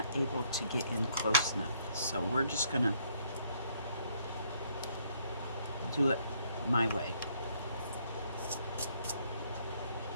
able to get in close enough, so we're just gonna do it my way.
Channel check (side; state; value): both; inverted; correlation -0.68